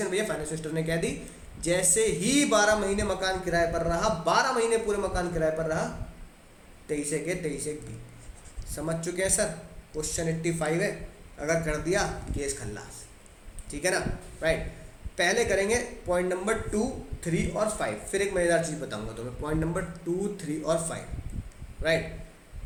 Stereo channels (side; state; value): both; identical; correlation 1.00